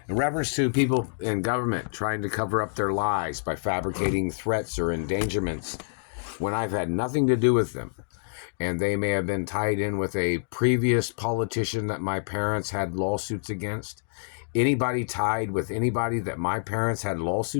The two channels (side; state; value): right; silent; digital silence